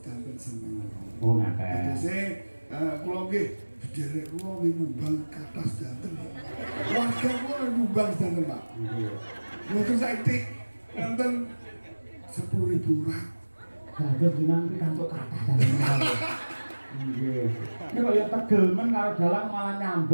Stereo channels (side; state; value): both; inverted; correlation -1.00